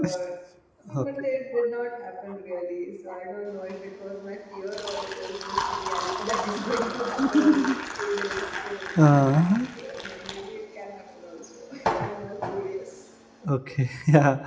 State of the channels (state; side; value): identical; both; correlation 1.00